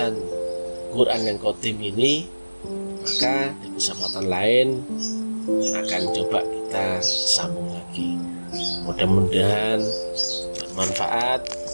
Quran yang qadim ini, maka di kesempatan lain akan coba kita sambung lagi. Mudah-mudahan bermanfaat.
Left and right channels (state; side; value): inverted; both; correlation -1.00